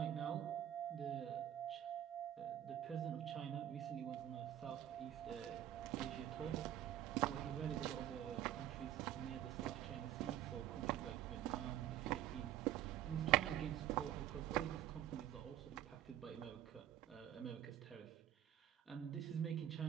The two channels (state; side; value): quieter; left; 11.9 dB